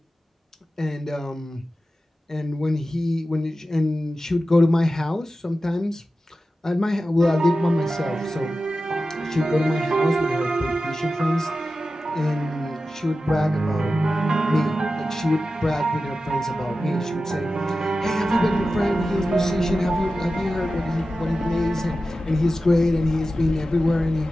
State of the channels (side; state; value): both; normal; correlation 0.93